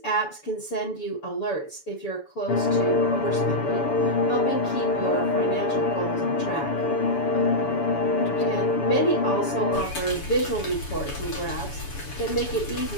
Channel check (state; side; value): late; right; 7.0 ms